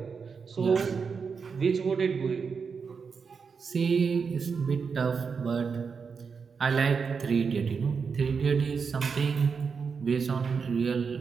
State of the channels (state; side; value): quieter; left; 5.6 dB